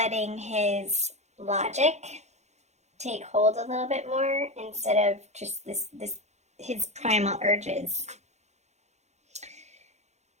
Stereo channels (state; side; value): late; left; 0.33 ms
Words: his logic take hold a little bit more instead of just his primal urges.